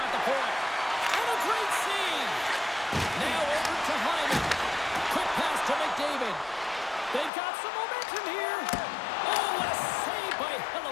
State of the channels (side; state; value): right; drops out; at 7.3 s